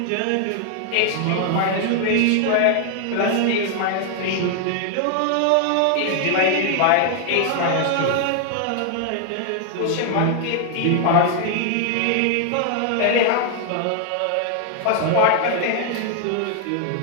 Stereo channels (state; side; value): different; both; correlation 0.00